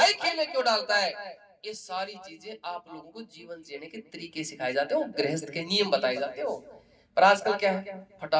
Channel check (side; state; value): both; identical; correlation 1.00